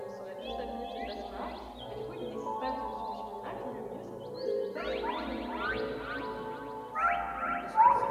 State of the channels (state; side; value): identical; both; correlation 1.00